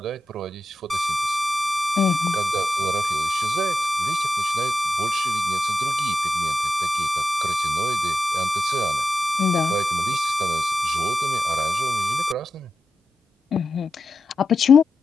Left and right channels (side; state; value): both; normal; correlation 0.90